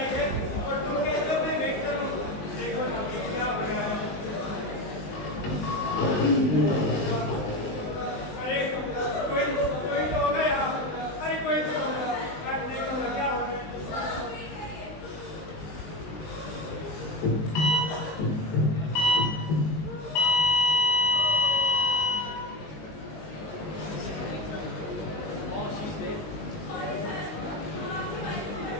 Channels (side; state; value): right; late; 19 ms